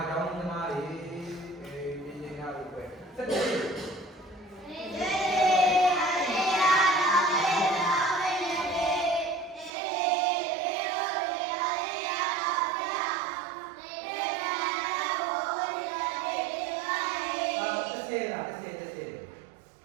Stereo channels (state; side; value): drops out; left; at 9.7 s